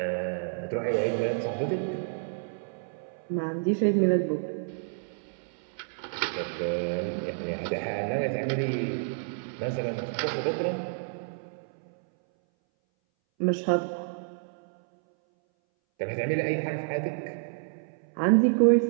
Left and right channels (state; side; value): silent; left; 58 dB below the other